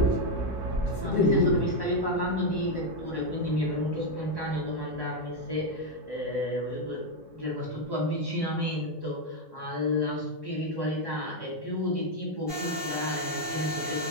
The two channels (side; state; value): both; normal; correlation 0.03